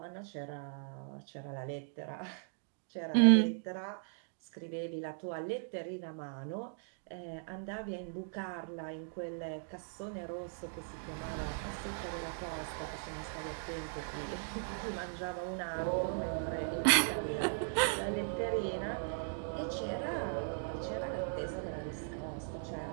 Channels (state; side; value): silent; left; digital silence